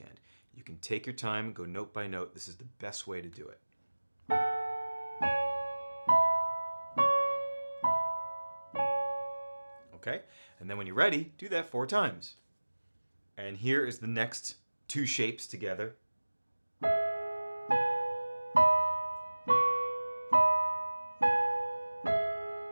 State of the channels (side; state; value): both; inverted; correlation -1.00